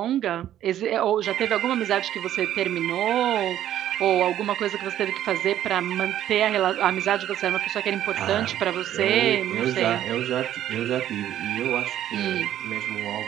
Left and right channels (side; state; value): left; quieter; 11.7 dB